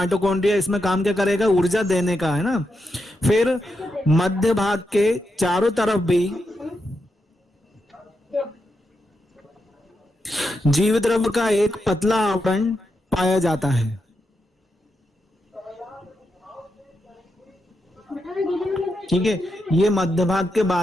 इसमें काम क्या करेगा, ऊर्जा देने का है ना। फिर मध्य भाग के चारों तरफ भी जीव द्रव्य का एक पतला आवरण पाया जाता है। ठीक है, ये मध्य भाग के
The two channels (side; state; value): both; normal; correlation 0.85